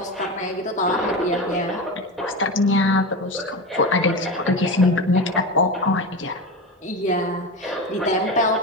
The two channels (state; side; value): normal; both; correlation 0.23